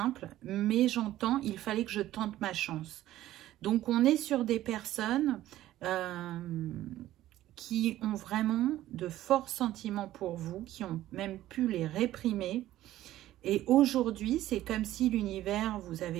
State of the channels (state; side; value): quieter; left; 14.3 dB